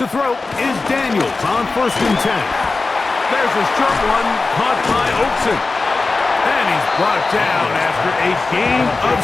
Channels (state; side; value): quieter; right; 3.7 dB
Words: throw is Daniels on first and 10. There's a short one caught by Oakson. And he's brought down after a gain